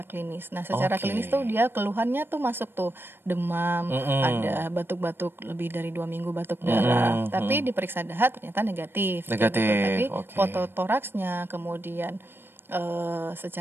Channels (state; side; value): late; left; 0.10 ms